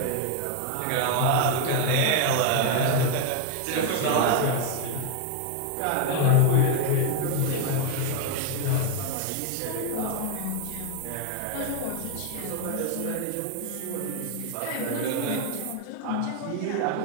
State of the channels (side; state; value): both; different; correlation 0.01